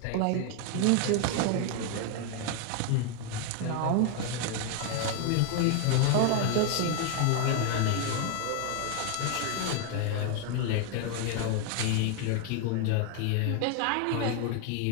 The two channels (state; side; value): different; both; correlation 0.01